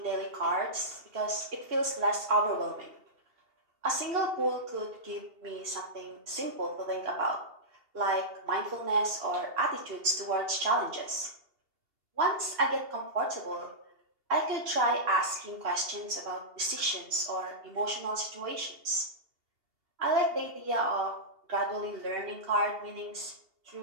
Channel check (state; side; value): late; left; 2.7 ms